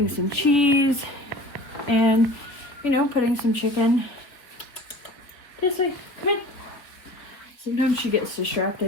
some cheese, and putting some chicken. This way, come in. Sometimes she gets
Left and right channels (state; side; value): late; right; 3.7 ms